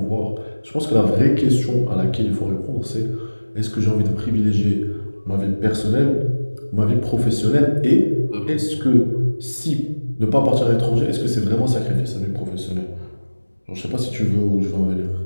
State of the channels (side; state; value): both; inverted; correlation -1.00